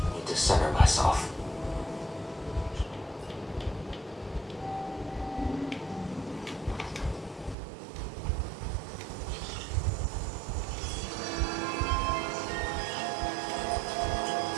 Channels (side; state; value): left; drops out; at 7.6 s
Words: Need to center myself.